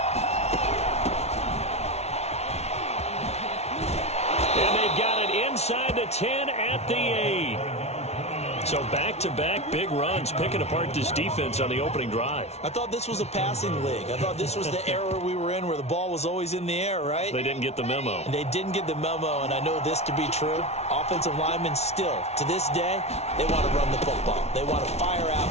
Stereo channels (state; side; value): late; right; 0.31 ms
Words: And they've got it inside the 10 at the 8. So back-to-back big runs, picking apart this defense on the opening drive. I thought this was a passing league. I thought this was the era we were in where the ball was always in the air, right? They didn't get the memo. And they didn't get the memo, and I know this to be true. Offensive linemen still, to this day, they want to run the football. They want to fire out